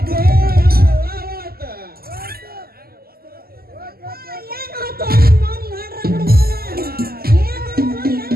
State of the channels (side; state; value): left; late; 0.44 ms